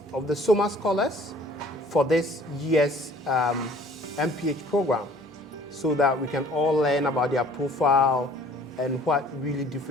of the Sommer Scholars for this year's MPH program so that we can all learn about their profile and what really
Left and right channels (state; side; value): normal; both; correlation 0.53